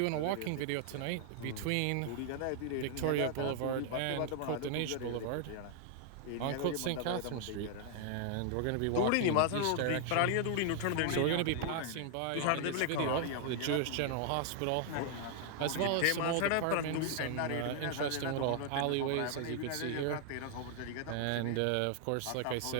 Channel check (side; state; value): both; different; correlation 0.00